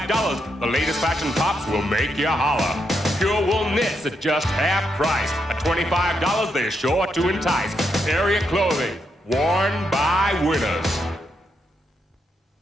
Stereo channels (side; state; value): both; normal; correlation 0.80